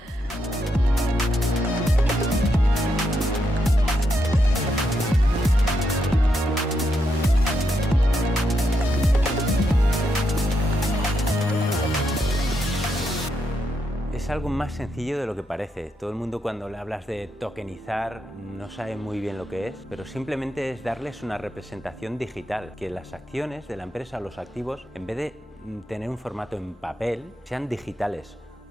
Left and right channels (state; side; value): normal; both; correlation 0.81